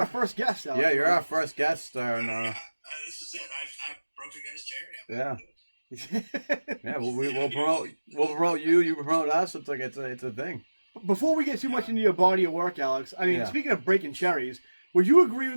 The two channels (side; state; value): both; inverted; correlation -1.00